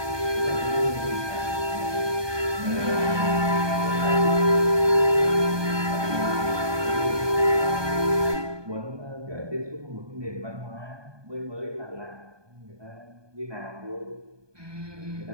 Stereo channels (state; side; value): late; left; 1.2 ms